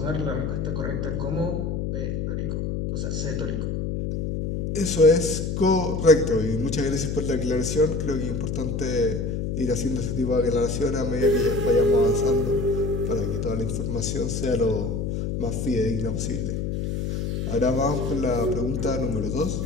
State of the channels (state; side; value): noise; left; hum, 2 dB below the sound